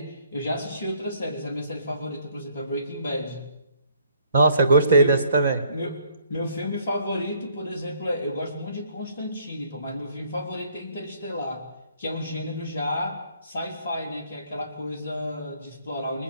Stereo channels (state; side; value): inverted; both; correlation -0.64